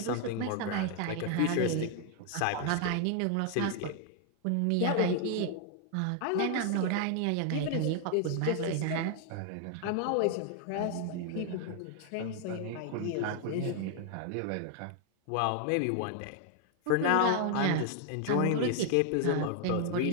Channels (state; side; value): different; both; correlation 0.00